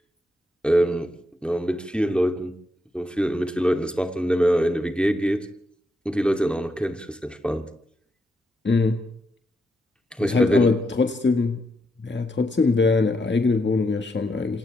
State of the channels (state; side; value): normal; both; correlation 0.81